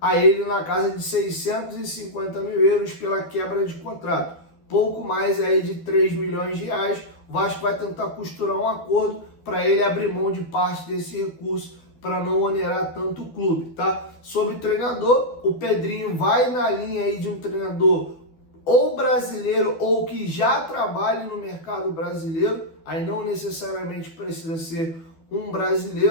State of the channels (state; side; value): late; right; 12 ms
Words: a ele na casa de 650 mil euros pela quebra de contrato. Pouco mais aí de 3 milhões de reais. O Vasco vai tentar costurar um acordo para ele abrir mão de parte desse recurso para não onerar tanto o clube, tá? Sobre treinador, o Pedrinho vai na linha aí de um treinador ou brasileiro ou que já trabalhe no mercado brasileiro, aí não necessariamente precisa ser um